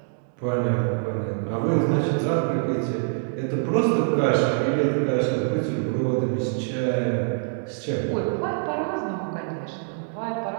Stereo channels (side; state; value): left; silent; digital silence